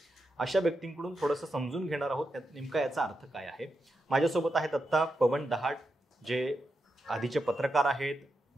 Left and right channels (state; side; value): normal; both; correlation 0.87